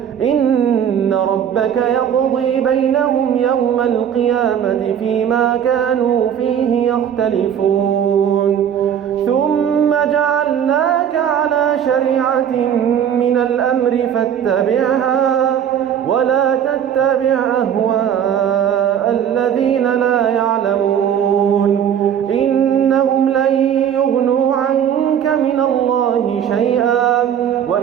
إن ربك يقضي بينهم يوم القيامة فيما كانوا فيه يختلفون. ثم جعلناك على شريعة من الأمر فاتبعها ولا تتبع أهواء الذين لا يعلمون. إنهم لن يغنوا عنك من الله شيئا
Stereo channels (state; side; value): quieter; left; 9.0 dB